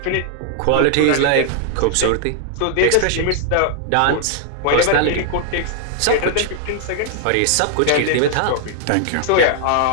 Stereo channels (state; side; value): different; both; correlation 0.00